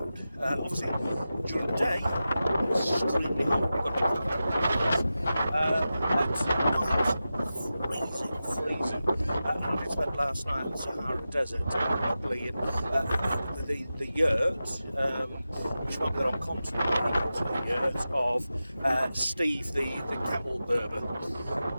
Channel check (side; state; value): both; inverted; correlation -0.93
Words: Obviously, during the day, it's extremely hot. You've got to at night, freezing. I spent last night in the Sahara Desert, probably in the yurt, which might be the wrong continent, the yurt of Steve, the camel berber.